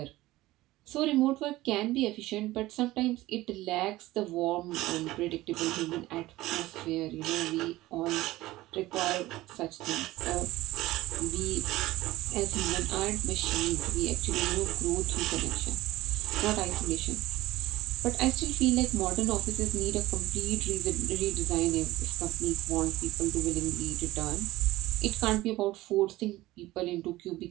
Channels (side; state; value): left; quieter; 17.6 dB